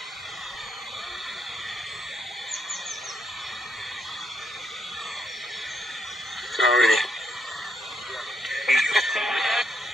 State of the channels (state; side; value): normal; both; correlation 0.76